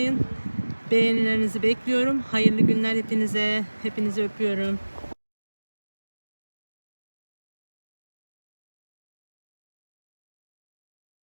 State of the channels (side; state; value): both; inverted; correlation -1.00